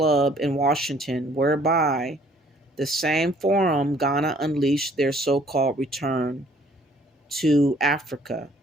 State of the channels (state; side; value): normal; both; correlation 0.60